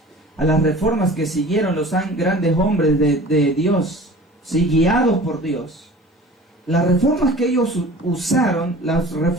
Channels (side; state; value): both; normal; correlation 0.42